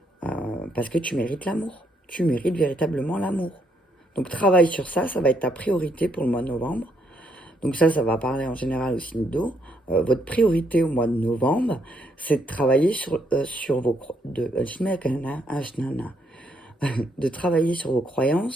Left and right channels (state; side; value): normal; both; correlation 0.74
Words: parce que tu mérites l'amour. Tu mérites véritablement l'amour. Donc travaille sur ça, ça va être ta priorité pour le mois de novembre. Donc ça va parler en général au signe d'eau. Votre priorité au mois de novembre, c'est de travailler sur vos de travailler sur vos